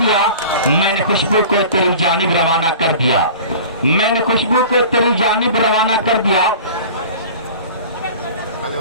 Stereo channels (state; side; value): inverted; both; correlation -0.40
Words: मैंने खुशबू को तेरी जानिब रवाना कर दिया, मैंने खुशबू को तेरी जानिब रवाना कर दिया।